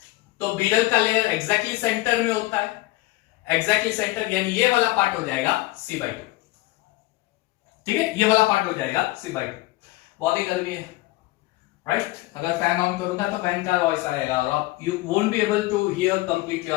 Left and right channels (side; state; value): right; quieter; 19.7 dB